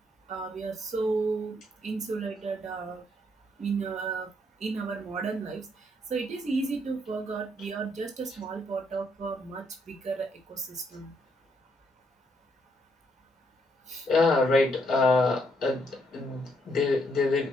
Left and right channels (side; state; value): both; normal; correlation 0.73